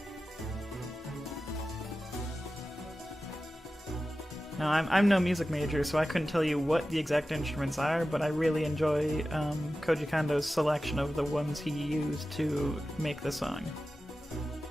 Now, I'm no music major, so I couldn't tell you what the exact instruments are, but I really enjoy Koji Kondo's selection of the ones he used to make the song.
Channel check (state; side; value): normal; both; correlation 0.94